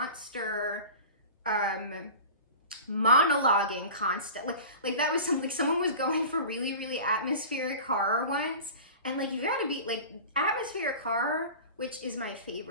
monologuing constantly. Like that was something, like someone was going for really, really atmospheric horror once. And like, you gotta be like, atmospheric horror, which is my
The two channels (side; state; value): both; inverted; correlation -0.36